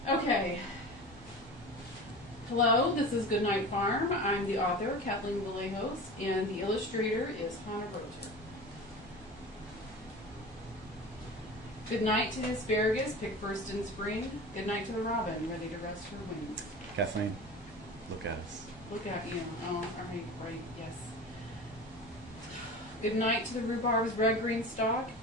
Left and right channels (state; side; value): normal; both; correlation 0.34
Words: Okay. Hello, this is Goodnight Farm. I'm the author, Kathleen Vallejos, and the illustrator is Hannah Roger. Good night to the asparagus, picked first in spring. Good night to the robin, ready to rest her wings. Kathleen, look at us. Look at you. Oh, all right, yes. Good night to the rhubarb's red-green stalk.